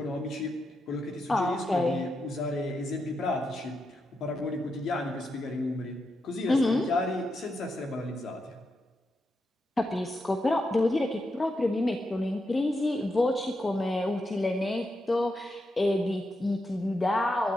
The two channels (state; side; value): normal; both; correlation 0.85